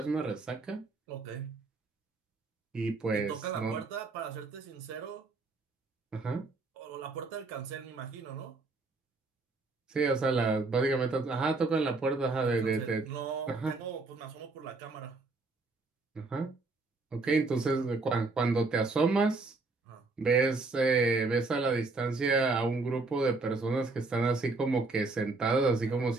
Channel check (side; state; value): left; quieter; 3.7 dB